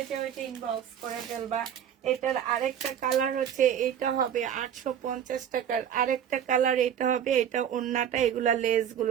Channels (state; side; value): quieter; left; 9.2 dB